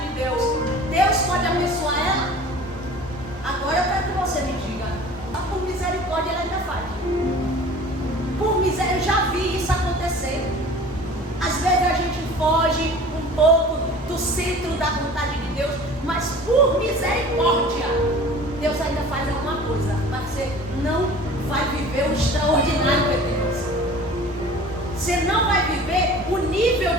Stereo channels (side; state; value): both; normal; correlation 0.43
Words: Deus, Deus pode abençoar ela. Agora eu quero que você me diga: por misericórdia ela ainda faz. Por miséria, eu já vi isso acontecer. Às vezes a gente foge um pouco do centro da vontade de Deus, mas por misericórdia Deus ainda faz alguma coisa. Mas você não vai viver o extraordinário de Deus. Você não vai viver o nível